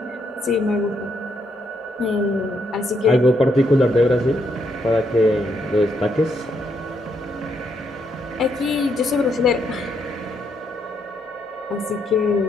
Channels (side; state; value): both; normal; correlation 0.76